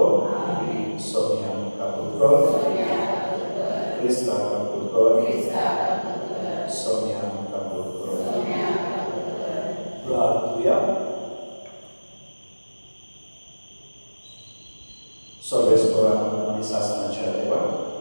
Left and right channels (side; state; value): both; inverted; correlation -1.00